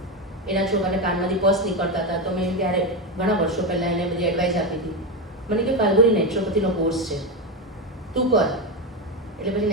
એના છોકરાને કાનમાંથી પસ નીકળતા હતા, તો મેં ત્યારે ઘણા વર્ષો પહેલાં એને બધી એડવાઇસ આપી હતી. મને કે ફાલ્ગુની નેચરોપેથીનો કોર્સ છે, તું કર. એટલે પછી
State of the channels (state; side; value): normal; both; correlation 0.12